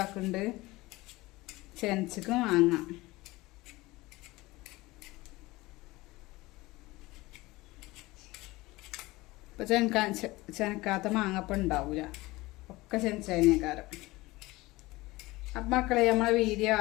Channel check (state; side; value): quieter; right; 20.5 dB